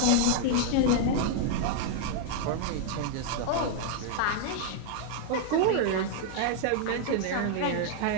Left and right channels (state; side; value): different; both; correlation 0.00